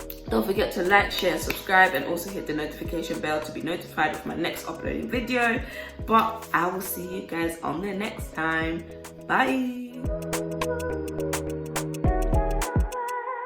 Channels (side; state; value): both; identical; correlation 1.00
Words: don't forget to like, share, subscribe, and also hit the notification bell to be notified of my next uploading video. But I will see you guys on the next time. Bye!